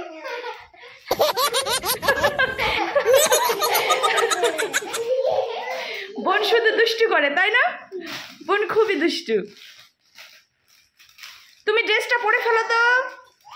বোন শুধু দুষ্টু করে, তাই না? বোন খুবই দুষ্টু। তুমি ড্রেসটা পরে ফেলো তো।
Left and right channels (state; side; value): identical; both; correlation 1.00